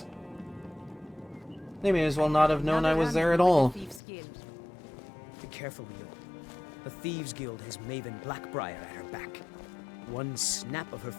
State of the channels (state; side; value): drops out; right; at 4.0 s